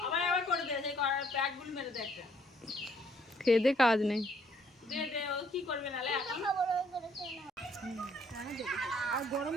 আবার করে দে, সেই প্যাকগুলো মেরে দে একটা। খেয়ে দে, কাজ নেই। দে দে, ও কি করবে নালে এখন? আর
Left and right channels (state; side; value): normal; both; correlation 0.65